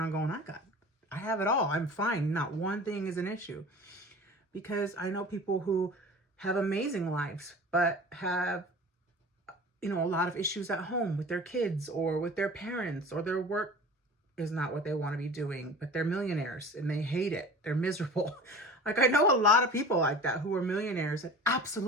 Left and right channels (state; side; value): normal; both; correlation 0.39